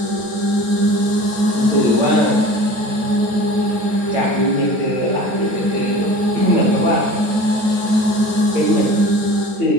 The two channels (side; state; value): left; late; 9.2 ms